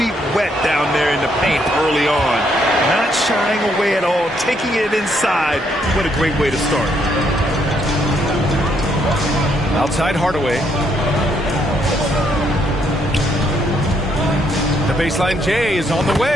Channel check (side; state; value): both; normal; correlation 0.73